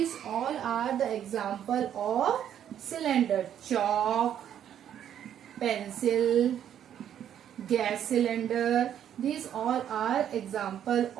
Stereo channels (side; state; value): left; quieter; 9.9 dB